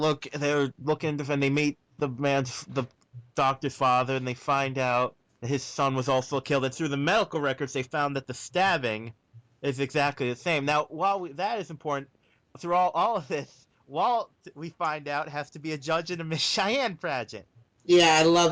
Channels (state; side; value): identical; both; correlation 1.00